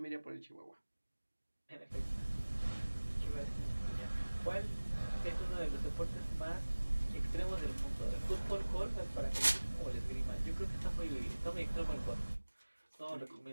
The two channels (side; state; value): both; inverted; correlation -1.00